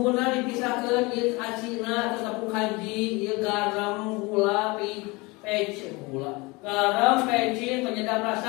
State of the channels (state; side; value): quieter; right; 25.0 dB